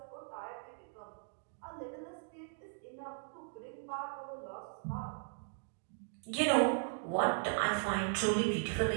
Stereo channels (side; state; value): left; silent; digital silence